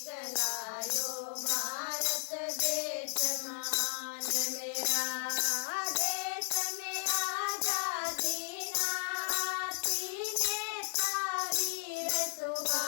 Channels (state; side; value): silent; right; 55 dB below the other